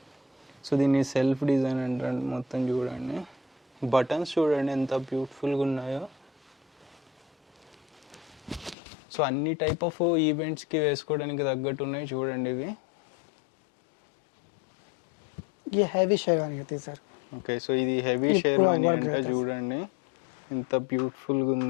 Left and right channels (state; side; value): drops out; right; at 8.8 s